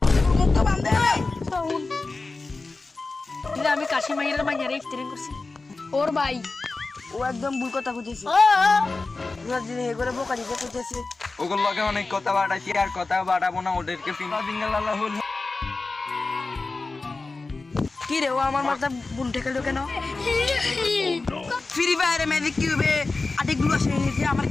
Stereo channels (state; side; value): quieter; right; 3.6 dB